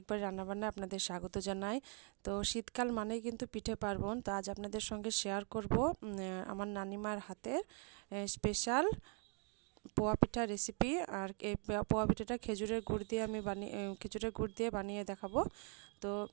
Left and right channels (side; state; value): left; quieter; 39.3 dB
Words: রান্নাবান্নায় আপনাদের স্বাগত জানাই। তো শীতকাল মানেই কিন্তু পিঠে পার্বণ। তো আজ আপনাদের সঙ্গে শেয়ার করব আমার নানিমার হাতের স্পেশাল পোয়া পিঠা রেসিপি। আর এই পোয়া পিঠাটা খেজুরের গুড় দিয়ে বানিয়ে দেখাবো। তো